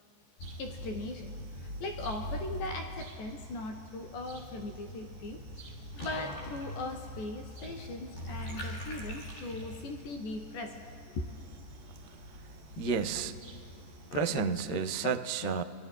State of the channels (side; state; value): right; late; 13 ms